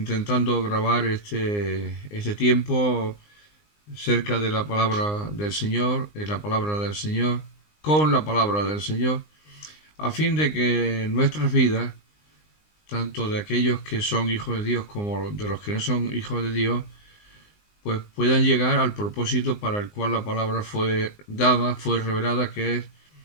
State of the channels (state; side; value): late; right; 19 ms